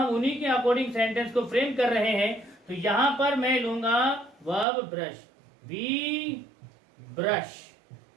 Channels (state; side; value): drops out; left; at 4.7 s